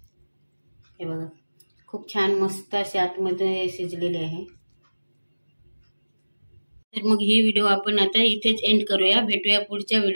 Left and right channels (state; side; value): inverted; both; correlation -1.00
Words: हे बघा खूप छान मस्त अशी आतमध्ये शिजलेली आहे. तर मग ही व्हिडिओ आपण आता इथेच एंड करूया. भेटूया पुढच्या